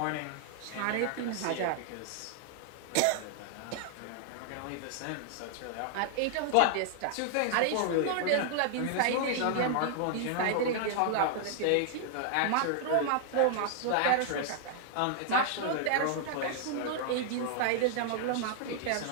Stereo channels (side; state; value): both; different; correlation 0.00